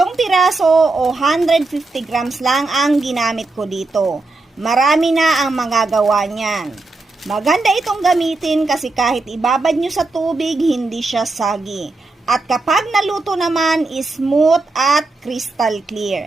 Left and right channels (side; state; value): left; quieter; 3.3 dB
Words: piraso o 150 grams lang ang ginamit ko dito. Marami na ang magagawa niyan. Maganda itong gamitin kasi kahit ibabad nyo sa tubig, hindi siya sagi. At kapag naluto naman, smooth at crystal